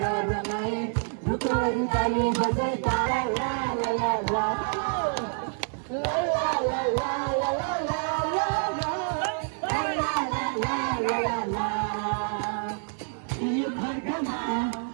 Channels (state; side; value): silent; left; 60 dB below the other